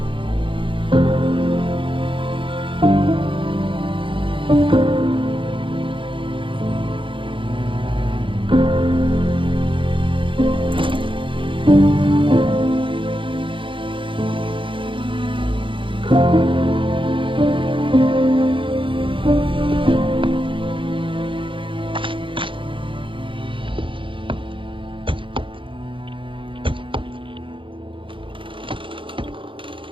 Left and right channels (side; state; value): left; late; 0.25 ms